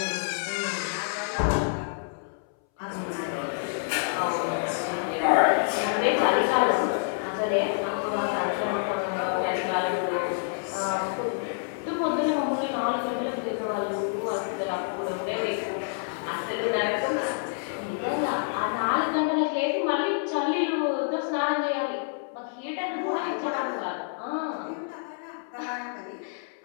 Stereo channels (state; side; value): silent; right; 59 dB below the other